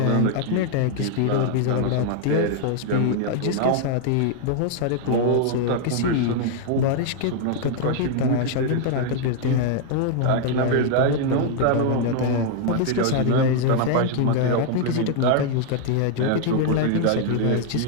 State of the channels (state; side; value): different; both; correlation 0.00